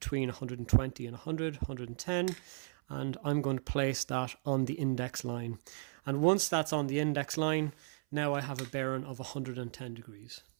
120 and 100, 110. And I'm going to place that on the index line. And once that's on the index line, now I have a bearing of 110 degrees.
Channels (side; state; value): left; silent; 54 dB below the other